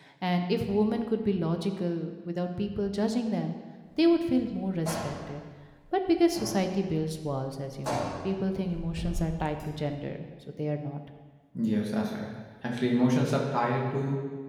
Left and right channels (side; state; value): both; identical; correlation 1.00